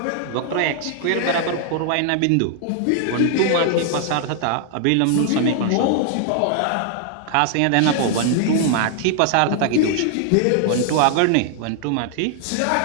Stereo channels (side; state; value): both; different; correlation 0.00